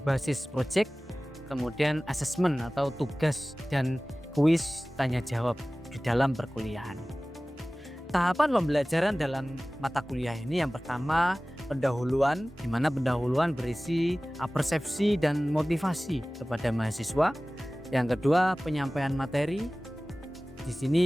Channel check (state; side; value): normal; both; correlation 0.98